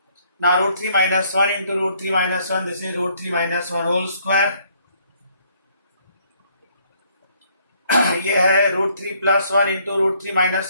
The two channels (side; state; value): both; inverted; correlation -0.66